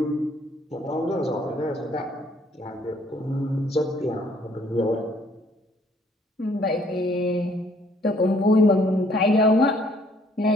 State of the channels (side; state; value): both; normal; correlation 0.63